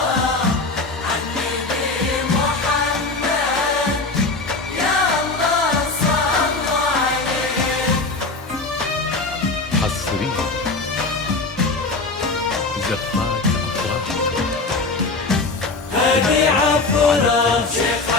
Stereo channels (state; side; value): quieter; right; 3.5 dB